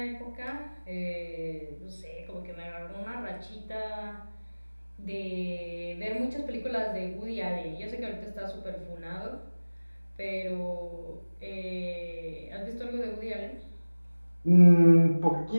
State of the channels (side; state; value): both; inverted; correlation -1.00